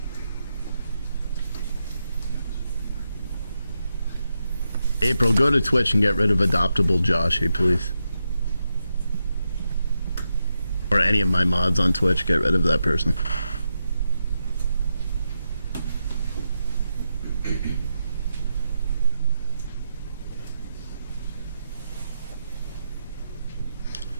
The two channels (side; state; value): both; inverted; correlation -0.85